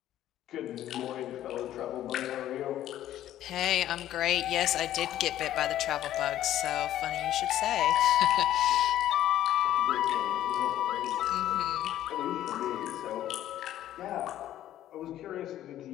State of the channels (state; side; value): quieter; right; 12.6 dB